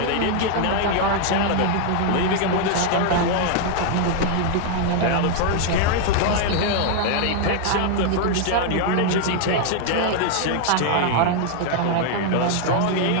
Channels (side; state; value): both; different; correlation 0.00